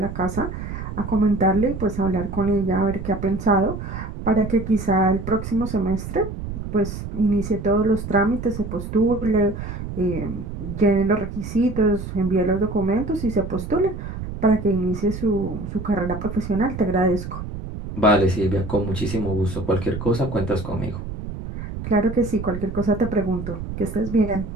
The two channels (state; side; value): noise; right; rumble, 7 dB below the sound